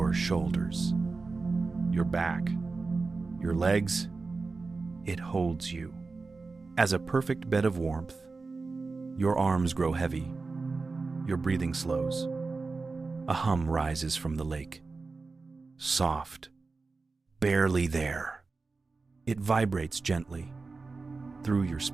shoulders, your back, your legs. It holds you. As a perfect bed of warmth, your arms grow heavy, your breathing slows. A hum rises from the lake, soft, barely there. It vibrates gently through your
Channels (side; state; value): left; quieter; 4.0 dB